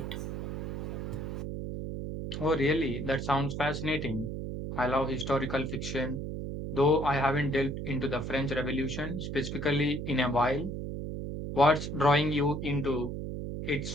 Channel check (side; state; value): right; noise; hum, 5 dB below the sound